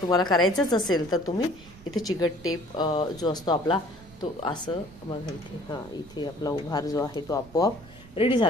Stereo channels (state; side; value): noise; right; rumble, 21 dB below the sound